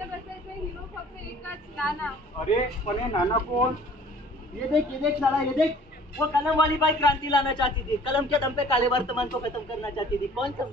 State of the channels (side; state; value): both; normal; correlation 0.51